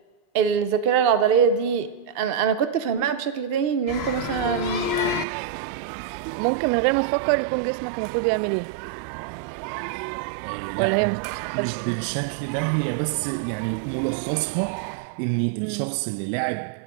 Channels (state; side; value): drops out; left; at 5.2 s